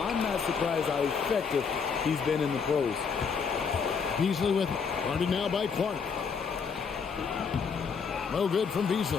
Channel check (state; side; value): quieter; right; 5.9 dB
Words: I'm not surprised how effective he's been in the pros. Beasley with it. Guarded now by Clark. No good from Beasley.